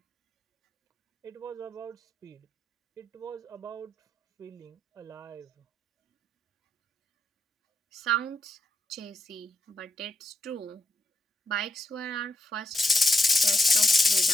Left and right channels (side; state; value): both; normal; correlation 0.83